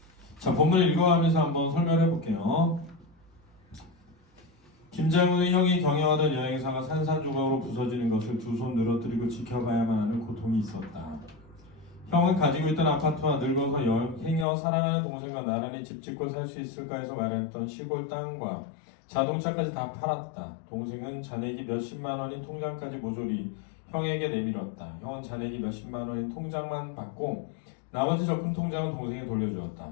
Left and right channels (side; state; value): right; drops out; at 14.5 s